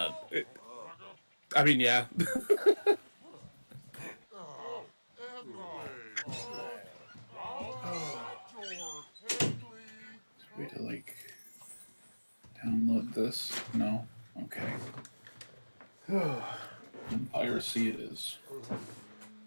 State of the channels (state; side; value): inverted; both; correlation -1.00